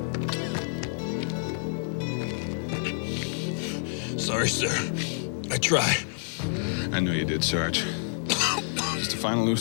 Sorry, sir. I try. I know you did, Sarge. Just a final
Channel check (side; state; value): right; silent; 59 dB below the other